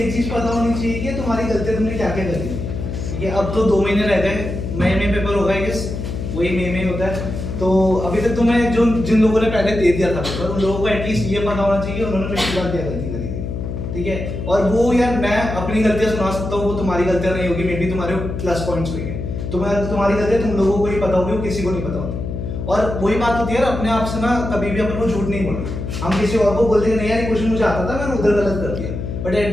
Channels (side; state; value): left; noise; hum, 5 dB below the sound